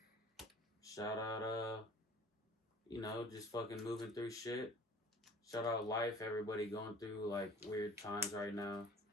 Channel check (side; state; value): both; normal; correlation 0.47